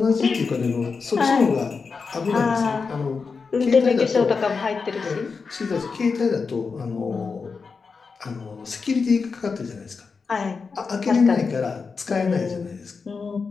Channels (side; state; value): right; quieter; 5.0 dB